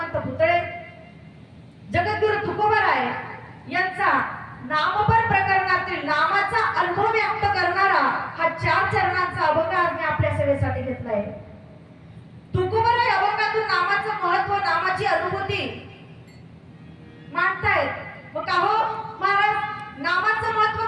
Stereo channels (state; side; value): identical; both; correlation 1.00